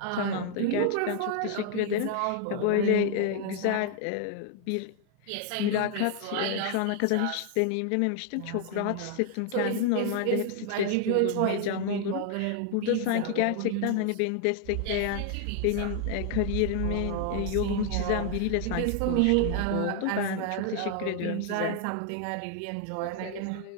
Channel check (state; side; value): different; both; correlation 0.00